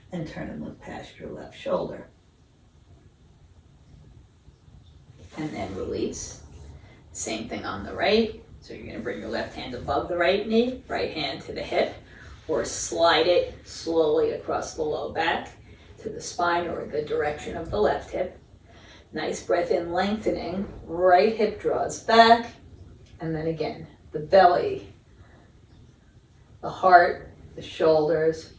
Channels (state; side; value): identical; both; correlation 1.00